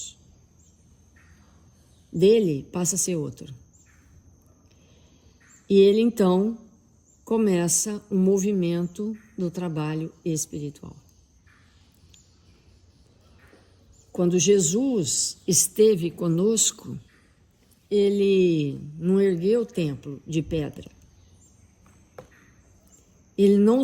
dele passa a ser outro. E ele então começa um movimento do trabalho espiritual. Quando Jesus esteve conosco, ele não ergueu o templo de pedra. Ele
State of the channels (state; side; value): identical; both; correlation 1.00